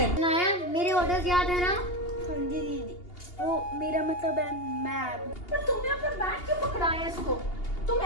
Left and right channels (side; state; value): right; late; 2.8 ms